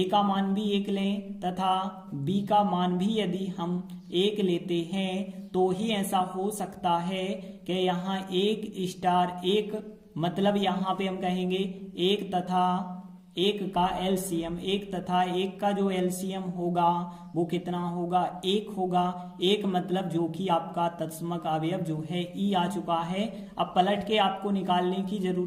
का मान भी 1 लें तथा बी का मान भी यदि हम 1 लेते हैं तो ही ऐसा हो सकता है कि यहाँ 1 स्टार 1, मतलब यहाँ पे हम कहेंगे 1 तथा 1 का एलसीएम, 1 तथा 1 का जो एलसीएम होगा वो कितना होगा, 1 होगा। 1 मतलब जो कि आपका तत्समक अवयव जो है ई आ चुका है। अब पलट के आपको निकालने की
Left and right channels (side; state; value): both; identical; correlation 1.00